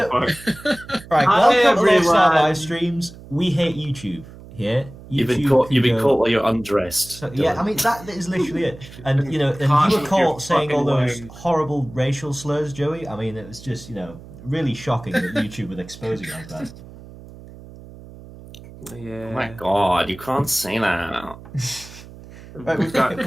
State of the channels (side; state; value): right; noise; hum, 18 dB below the sound